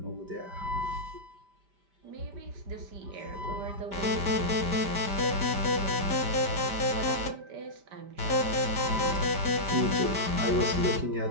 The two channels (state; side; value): late; left; 5.0 ms